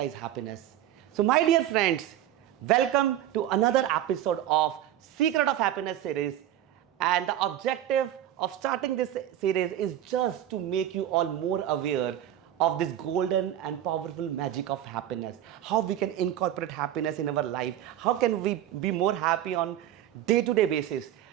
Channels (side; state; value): left; quieter; 11.9 dB